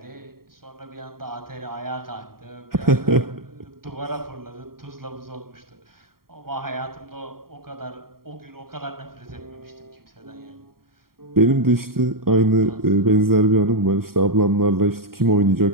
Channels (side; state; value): left; late; 0.93 ms